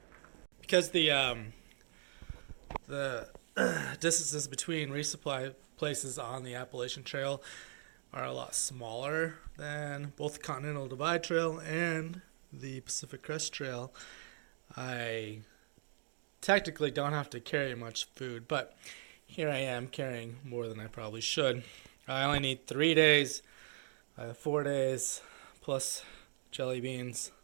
Because the distances between resupply places on the Appalachian Trail are a lot smaller than both the Continental Divide Trail and the Pacific Crest Trail, I technically don't have to carry much food, but here I am carrying more than I probably should. I only need 3 days. I have 4 days plus jelly beans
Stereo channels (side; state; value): left; silent; digital silence